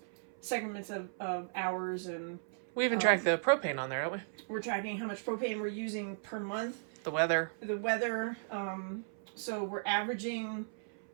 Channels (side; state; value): left; silent; 54 dB below the other